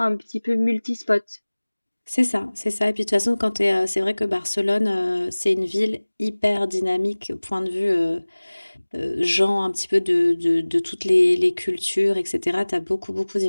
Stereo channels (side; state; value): both; inverted; correlation -1.00